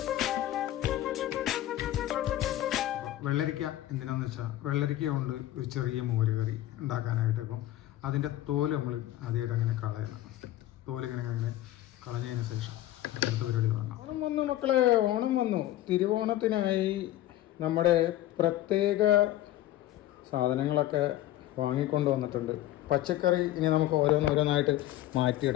വെള്ളരിക്ക എന്തിനാന്ന് വെച്ചാൽ വെള്ളരിക്ക കൊണ്ട് ഒരു ചെറിയ മോര് കറി ഉണ്ടാക്കാനായിട്ട്. ഇപ്പം അതിൻ്റെ തോല് നമ്മൾ ആദ്യമായിട്ട് അങ്ങനെ കളയണം. തോലിങ്ങനെ കളഞ്ഞതിന് ശേഷം അടുത്ത പരിപാടി തുടങ്ങാം. ഓണം വന്നു മക്കളെ, ഓണം വന്നു. തിരുവോണത്തിനായി നമ്മുടെ പ്രത്യേക സാധനങ്ങളൊക്കെ വാങ്ങിക്കൊണ്ട് വന്നിട്ടുണ്ട്. പച്ചക്കറി ഇനി നമുക്ക് ഓരോന്നായിട്ട്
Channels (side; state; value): right; quieter; 14.4 dB